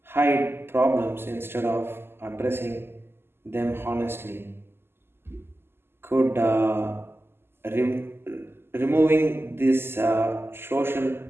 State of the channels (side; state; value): left; late; 0.11 ms